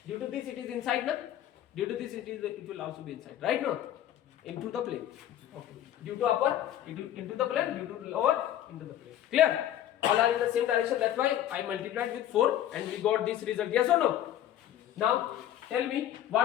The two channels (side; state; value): right; quieter; 11.8 dB